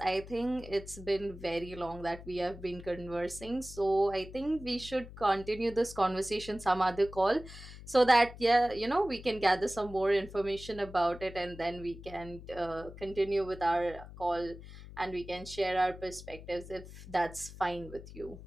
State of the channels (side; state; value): left; noise; hum, 15 dB below the sound